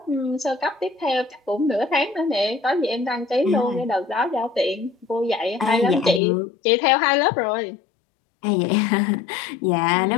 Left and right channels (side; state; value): right; drops out; at 6.2 s